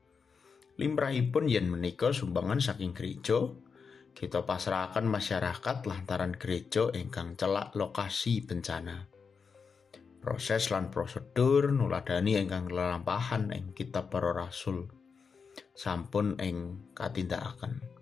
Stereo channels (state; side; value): quieter; right; 5.6 dB